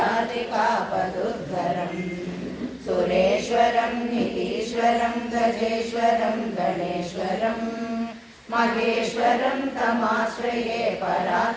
सुरेश्वरं नितीश्वरं गजेश्वरं गणेश्वरं महेश्वरं तमाश्रये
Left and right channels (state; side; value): identical; both; correlation 1.00